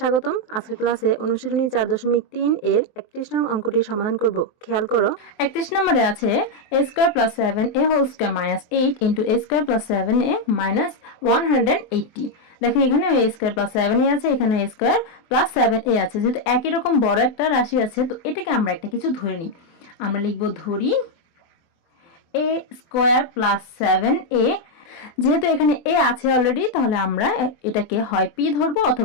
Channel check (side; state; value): right; late; 23 ms